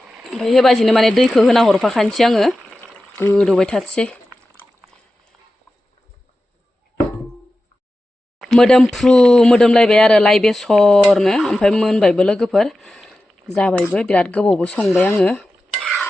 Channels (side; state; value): both; normal; correlation 0.93